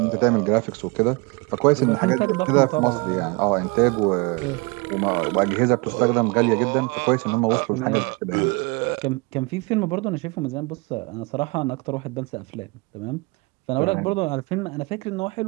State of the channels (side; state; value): left; quieter; 27.7 dB